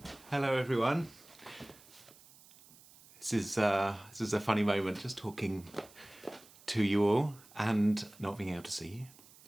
Hello everyone. This is a funny moment, just talking to you all and not being able to see you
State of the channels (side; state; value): right; noise; hiss, 24 dB below the sound